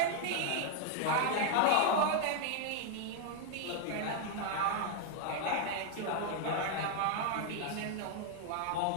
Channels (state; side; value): different; both; correlation 0.00